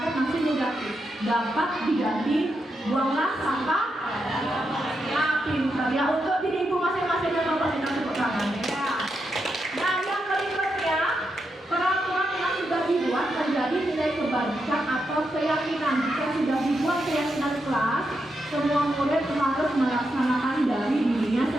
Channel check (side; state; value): both; normal; correlation 0.84